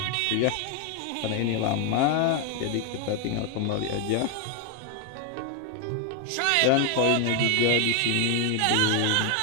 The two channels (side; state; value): both; different; correlation 0.01